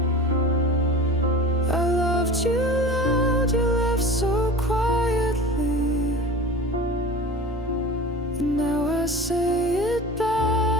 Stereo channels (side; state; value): both; normal; correlation 0.36